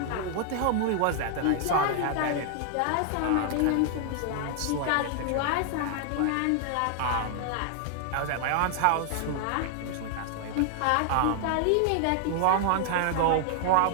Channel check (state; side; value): different; both; correlation 0.00